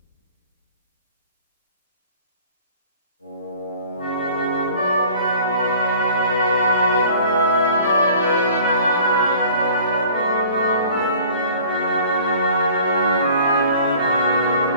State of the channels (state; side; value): inverted; both; correlation -0.48